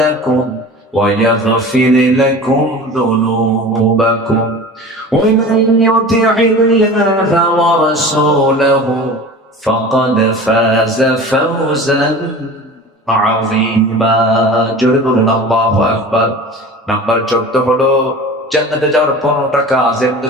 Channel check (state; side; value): normal; both; correlation 0.37